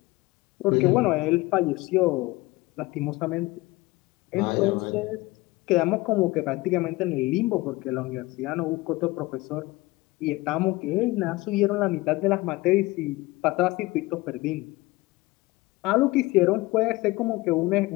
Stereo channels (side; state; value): right; quieter; 20.9 dB